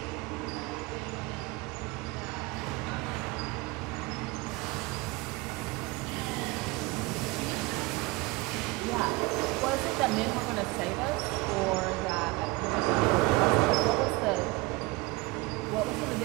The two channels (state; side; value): quieter; left; 23.2 dB